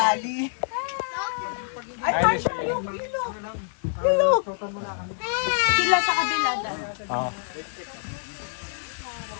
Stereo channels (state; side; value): silent; right; digital silence